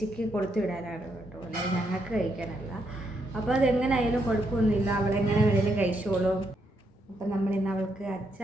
കൊടുത്തു വിടാനാണ് കേട്ടോ, അല്ലെങ്കിൽ ഞങ്ങൾക്ക് കഴിക്കാനല്ല. അപ്പോൾ അതെങ്ങനെയായാലും കുഴപ്പമൊന്നുമില്ല, അവളെങ്ങനെ വേണേലും കഴിച്ചോളും. അപ്പം നമ്മളിന്ന് അവൾക്ക്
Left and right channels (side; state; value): both; normal; correlation 0.77